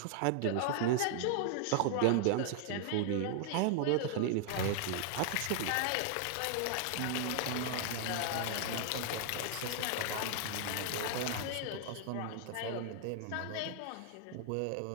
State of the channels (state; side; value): different; both; correlation -0.01